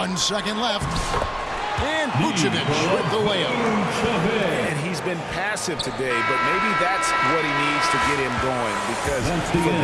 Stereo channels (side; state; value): both; identical; correlation 1.00